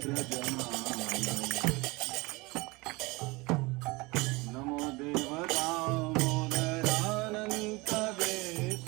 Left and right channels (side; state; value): left; quieter; 24.0 dB